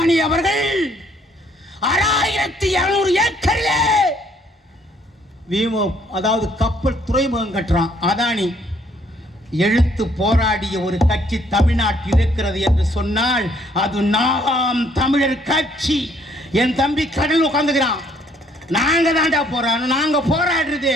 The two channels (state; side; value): normal; both; correlation 0.65